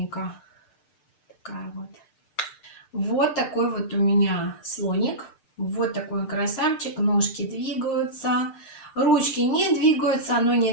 Такая вот. Вот такой вот у меня слоник. Вот такой он красавчик. Ножки двигаются. Ручки не двигаются, но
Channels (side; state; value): right; late; 6.6 ms